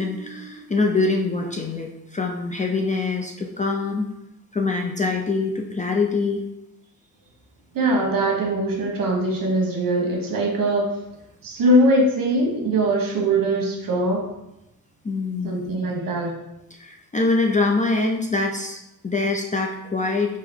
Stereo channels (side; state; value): both; normal; correlation 0.31